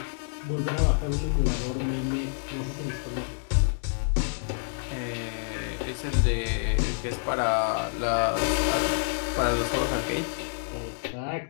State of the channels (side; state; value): right; silent; digital silence